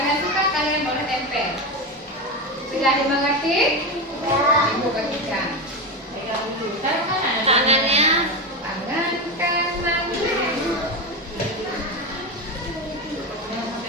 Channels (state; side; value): normal; both; correlation 0.16